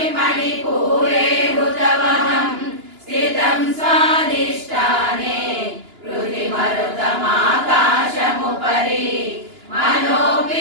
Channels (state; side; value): late; left; 2.9 ms